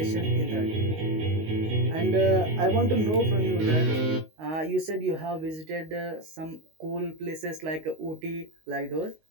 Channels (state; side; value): late; left; 19 ms